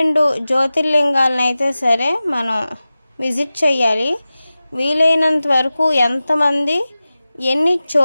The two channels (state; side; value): inverted; both; correlation -0.96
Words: జ్యోతిర్లింగాలను అయితే సరే మనం విజిట్ చేయాలి. వీలైనంత వరకు ఎంతమంది ఎన్ని